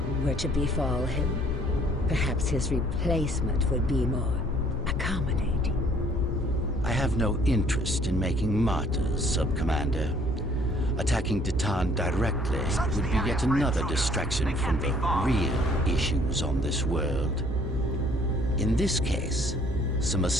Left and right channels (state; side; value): normal; both; correlation 0.60